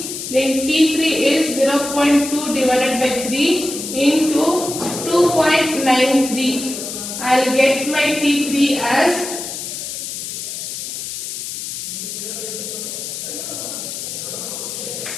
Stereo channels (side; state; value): left; noise; hiss, 6 dB below the sound